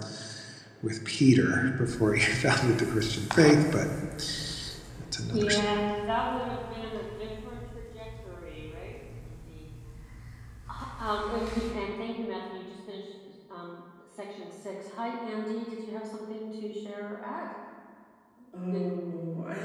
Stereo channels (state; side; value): identical; both; correlation 1.00